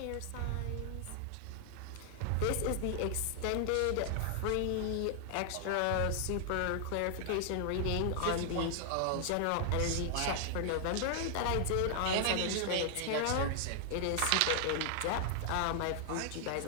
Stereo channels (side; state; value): both; different; correlation 0.00